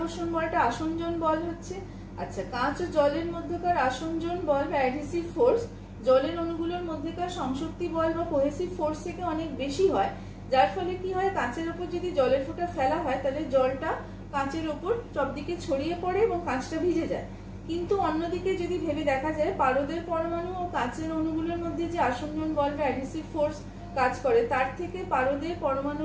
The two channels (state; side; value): identical; both; correlation 1.00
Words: বলটা আসঞ্জন বল হচ্ছে। আচ্ছা, কাঁচ ও জলের মধ্যকার আসঞ্জন বল বা অ্যাডহেসিভ ফোর্স জলের অণুগুলোর মধ্যেকার সংশক্তি বল বা কোহেসিভ ফোর্স থেকে অনেক বেশি হয়, যার ফলে কি হয়, কাঁচের ওপর যদি জলের ফোঁটা ফেলা হয় তাহলে জলটা কাঁচের ওপর সব দিকে ছড়িয়ে পড়ে এবং কাঁচটা ভিজে যায়। কিন্তু অন্যদিকে যদি ভেবে দেখা যায়, পারদের পরমাণু ও কাঁচের অণুগুলোর মধ্যে যে আসঞ্জন বল বা অ্যাডহেসিভ ফোর্স কাজ করে, তার থেকে পারদের